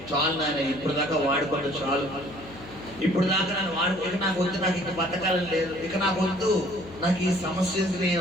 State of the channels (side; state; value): left; noise; hum, 18 dB below the sound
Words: చాలు నాయన, ఇప్పుడు దాకా వాడుకోండి, చాలు, ఇప్పుడు దాకా నన్ను ఇక నాకు వద్దు, నాకు ఇక బతకాలని లేదు, ఇక నాకు వద్దు, నాకు ఈ సమస్య